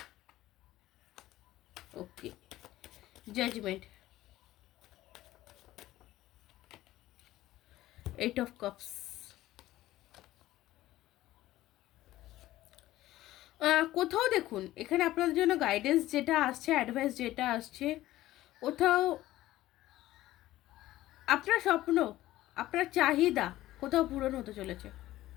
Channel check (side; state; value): right; quieter; 15.5 dB